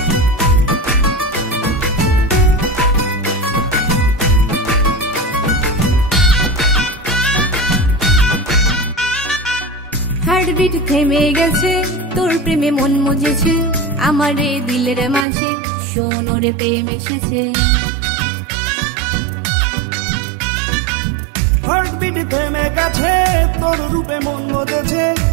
হার্টবিট থেমে গেছে তোর প্রেমে মন মজেছে, আমার এই দিলের মাঝে সোনরে প্রেম এসেছে। হার্টবিট থেমে গেছে তোর রূপে মন মজেছে,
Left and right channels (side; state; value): left; drops out; at 15.2 s